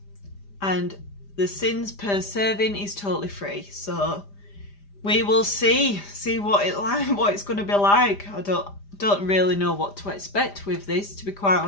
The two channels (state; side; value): late; right; 5.0 ms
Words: And the sins per serving is totally free, so we will see what it's going to be like. I don't really know what to expect with this, to be quite